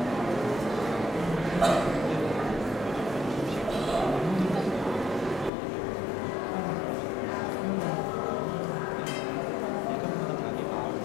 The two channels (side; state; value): right; drops out; at 5.5 s